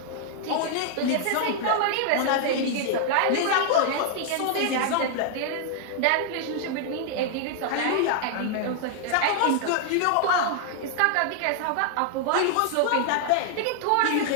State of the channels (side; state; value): both; different; correlation 0.00